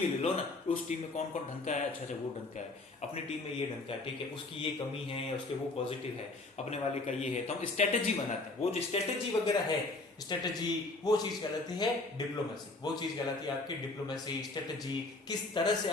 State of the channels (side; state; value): right; quieter; 3.2 dB